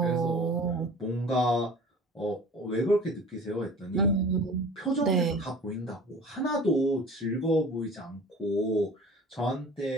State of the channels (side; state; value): both; normal; correlation 0.42